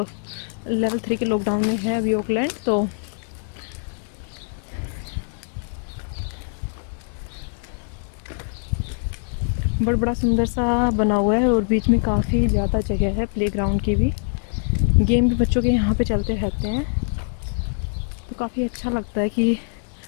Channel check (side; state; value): right; silent; 63 dB below the other